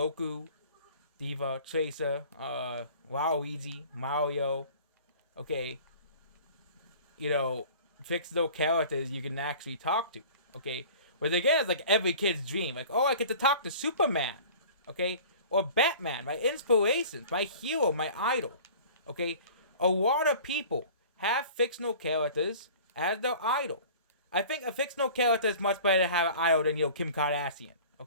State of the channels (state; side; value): inverted; both; correlation -0.44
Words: Diva, Tracer, Waluigi, Mario, okay. Fictional characters you can actually talk to, okay. But again, it's like every kid's dream. Like, oh, I get to talk to Superman, okay? Or Batman, my inspirations, my hero, my idol, okay? A lot of people have fictional characters as their idol. I think a fictional character is much better to have an idol than, Kim Kardashian,